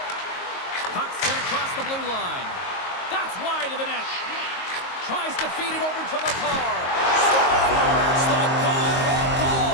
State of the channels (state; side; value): late; right; 22 ms